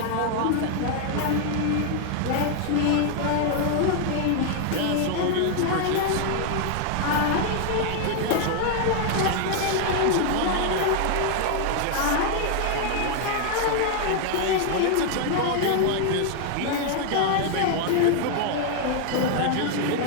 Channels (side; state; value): both; different; correlation 0.00